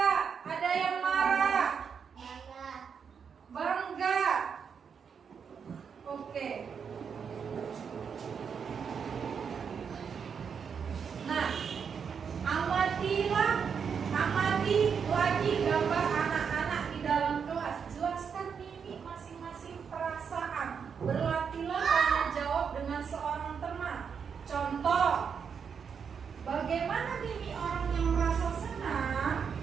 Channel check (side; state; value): left; quieter; 6.6 dB